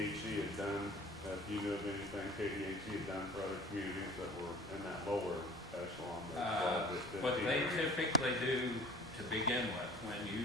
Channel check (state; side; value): normal; both; correlation 0.47